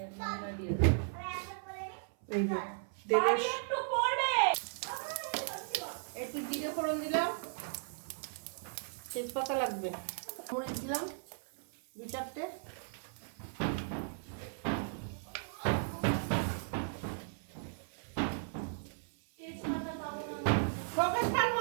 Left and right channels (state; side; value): silent; left; 54 dB below the other